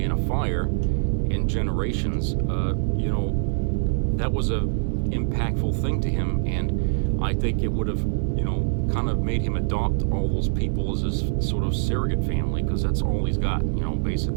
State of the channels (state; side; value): silent; left; digital silence